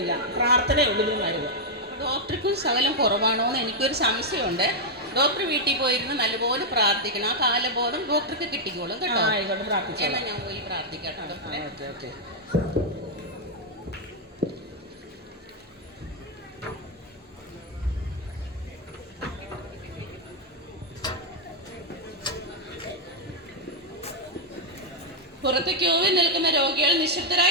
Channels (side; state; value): both; normal; correlation -0.03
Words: പ്രാർത്ഥനയുള്ളതിന് മരുന്ന്. ഡോക്ടർക്കും ശകലം കുറവാണോ എന്ന് എനിക്കൊരു സംശയമുണ്ട്. ഡോക്ടർ വീട്ടിൽ പോയിരുന്ന് നല്ലപോലെ പ്രാർത്ഥിക്കണം. ആ കാലബോധം ഡോക്ടർക്ക് കിട്ടിക്കോളും കേട്ടോ. എന്നാൽ ഞാൻ പോയി പ്രാർത്ഥിക്കാം ഡോക്ടറെ. ഓക്കെ. പുറത്ത് ക്യൂവിൽ നിൽക്കുന്ന രോഗികൾ